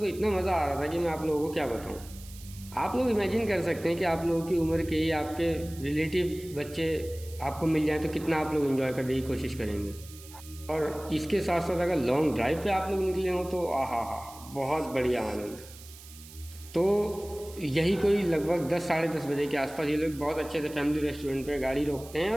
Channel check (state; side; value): noise; right; hiss, 18 dB below the sound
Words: इतना मज़ा आ रहा था कि मैं आप लोगों को क्या बताऊँ। आप लोग इमेजिन कर सकते हैं कि आप लोगों की उम्र के ही आपके रिलेटिव बच्चे आपको मिल जाए तो कितना आप लोग एंजॉय करने की कोशिश करेंगे। और इसके साथ साथ अगर लॉन्ग ड्राइव पे आप लोग निकले हों तो आहा हा, बहुत बढ़िया आनंद। तो यही कोई लगभग 10 साढ़े 10 बजे के आसपास ये लोग बहुत अच्छे से फैमिली रेस्टोरेंट पे गाड़ी रोकते हैं